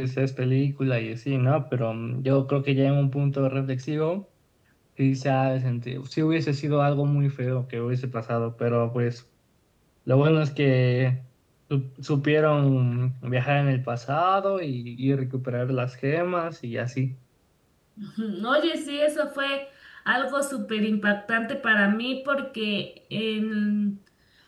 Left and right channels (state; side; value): identical; both; correlation 1.00